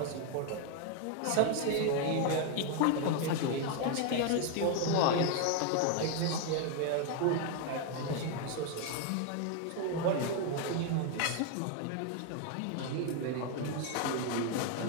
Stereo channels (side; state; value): both; different; correlation 0.01